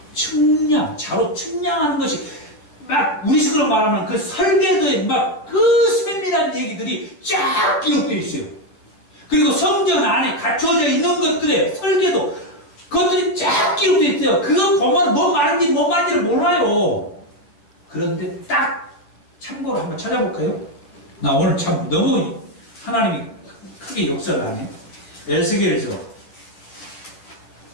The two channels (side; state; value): right; late; 10 ms